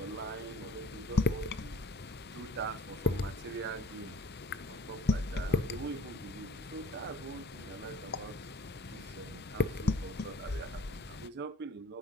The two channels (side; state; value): both; normal; correlation 0.50